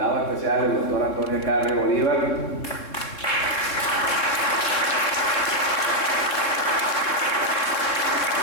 especial, el doctor Antonio del Carri Bolívar.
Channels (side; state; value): right; late; 3.7 ms